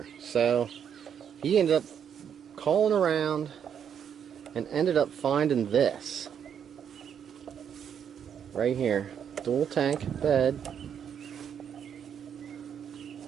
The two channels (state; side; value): quieter; left; 8.2 dB